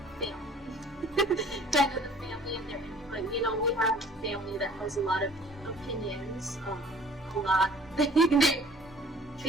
family, kind of the family and their input. You know, we have a family that has a lot of opinions,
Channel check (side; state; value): both; normal; correlation 0.51